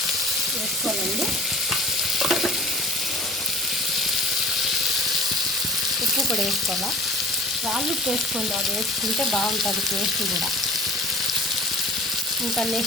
వేసుకోవాలండి. ఉప్పు కూడా వేసుకోవాలా. రాళ్ళు వేసుకోండి, అది వేసుకుంటే బాగుంటుంది టేస్ట్ కూడా. ఇంకా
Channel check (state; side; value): normal; both; correlation 0.43